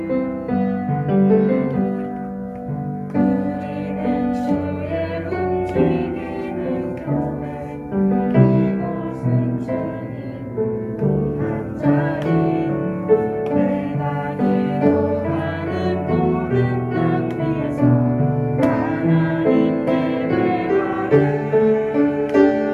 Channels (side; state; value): both; identical; correlation 1.00